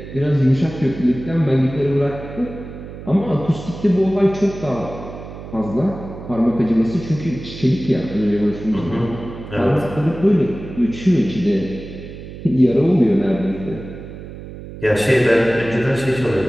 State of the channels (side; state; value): right; noise; hum, 13 dB below the sound